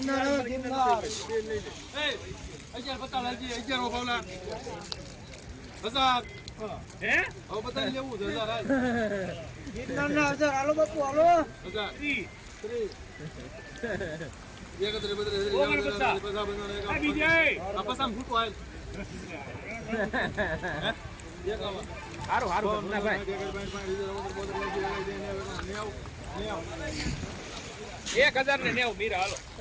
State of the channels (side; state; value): both; identical; correlation 1.00